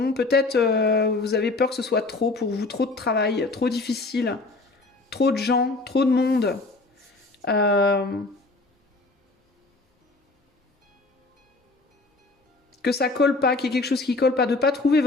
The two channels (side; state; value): right; quieter; 3.3 dB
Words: Peut-être vous avez peur que ce soit trop pour vous, trop de travail, trop difficile, trop de gens, trop de monde. Que ça colle pas, qu'il y ait quelque chose qui colle pas, de pas trouver